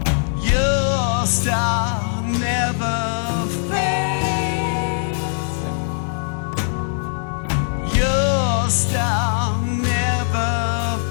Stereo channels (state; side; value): silent; right; digital silence